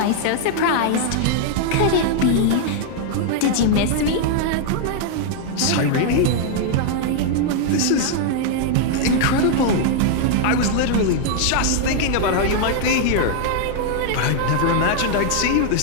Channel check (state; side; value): different; both; correlation -0.01